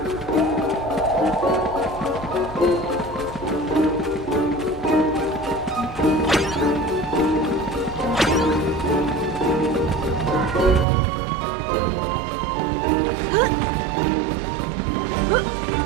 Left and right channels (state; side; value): drops out; left; at 10.9 s